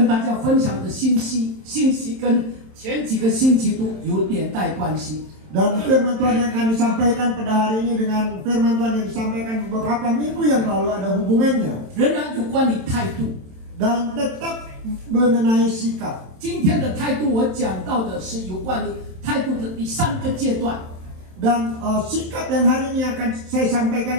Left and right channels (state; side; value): late; left; 27 ms